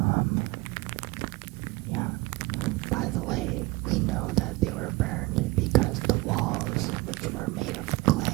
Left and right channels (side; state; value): left; quieter; 21.9 dB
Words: By the way, we know that they were burned because the walls, which were made of